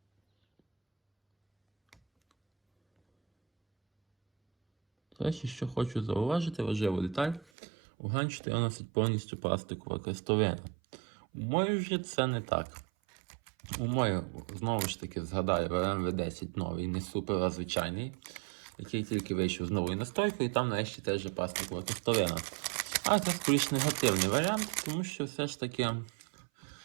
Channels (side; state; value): left; drops out; at 7.5 s